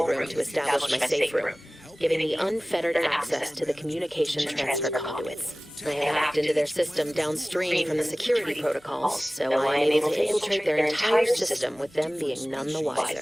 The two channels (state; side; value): normal; both; correlation 0.98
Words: room to establish my safe room, giving me unfettered access to the communication transfer conduits. I have hacked into their system downstream from the security protocols, so I am able to infiltrate their entire system with them being none the